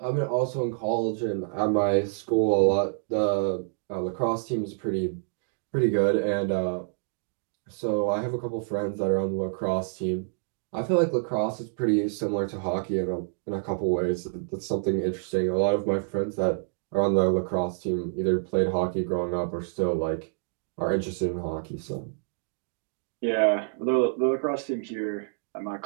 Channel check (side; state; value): left; silent; digital silence